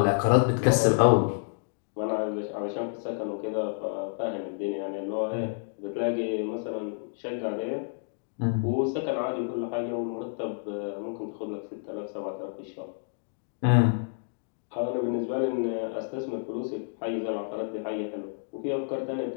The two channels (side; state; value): right; silent; digital silence